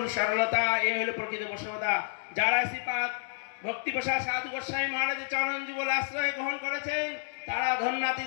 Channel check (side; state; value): right; silent; digital silence